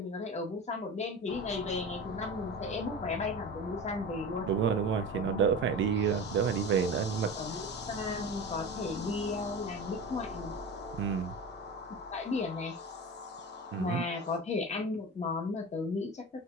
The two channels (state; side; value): normal; both; correlation 0.30